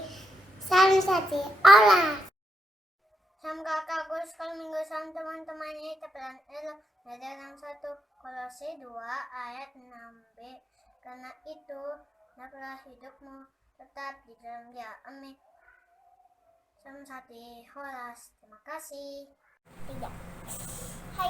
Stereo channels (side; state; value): both; normal; correlation 0.83